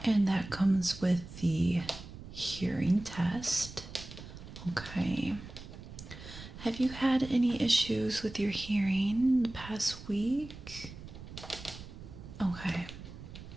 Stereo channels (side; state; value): right; noise; rumble, 14 dB below the sound